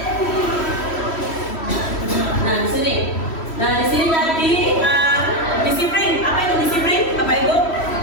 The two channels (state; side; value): late; right; 3.1 ms